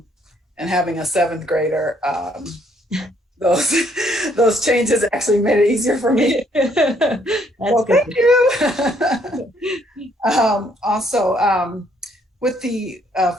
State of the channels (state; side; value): normal; both; correlation 0.68